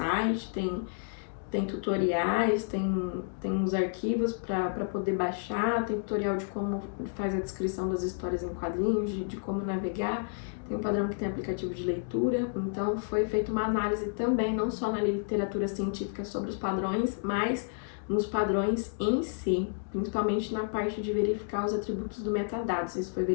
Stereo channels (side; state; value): right; silent; digital silence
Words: tem tutoriais, tem os arquivos para poder baixar, tem tutorial de como faz a descrição das histórias em quadrinhos, de como navegar, tem um padrão que tem aplicativo de leitura, então foi feita uma análise também, não só na literatura científica sobre os padrões, mas nos padrões em si, principalmente na parte de verificar os atributos do metadados, isso foi